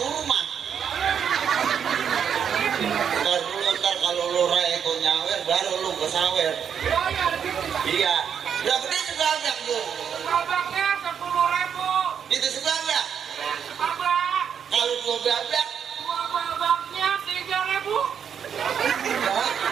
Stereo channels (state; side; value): quieter; left; 7.8 dB